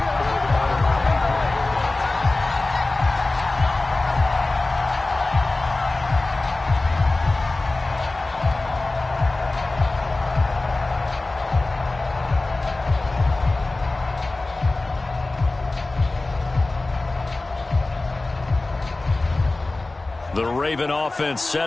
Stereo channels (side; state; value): right; quieter; 3.1 dB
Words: The Raven offense